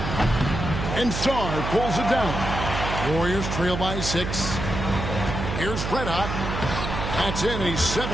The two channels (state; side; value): noise; right; hum, 4 dB below the sound